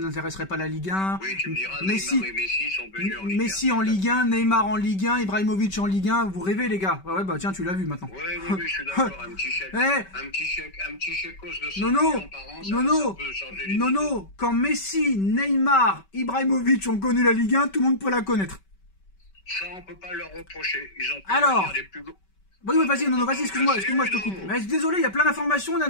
pas la Ligue 1. Oui, tu me diras, Neymar et Messi sont venus en Ligue 1. Messi en Ligue 1, Neymar en Ligue 1, Ibrahimovic en Ligue 1, vous rêvez les gars. Tiens, tu l'as vu maintenant. Oui, je suis d'accord, un petit chèque de 100 millions par an, ça peut changer les Nono, quand Messi, Neymar, Ibrahimovic ont connu la Ligue 1, tout le monde peut la connaître. Ça, on peut pas leur reprocher. Ils ont pu Alors, venir les plus gros. oui, oui, vas-y, Nono, vas-y, excuse-moi, je te coupe. Mais désolé, il y a plein d'informations là,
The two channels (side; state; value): right; late; 5.2 ms